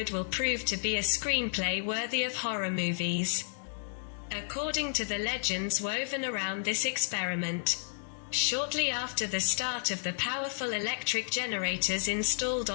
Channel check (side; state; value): right; silent; digital silence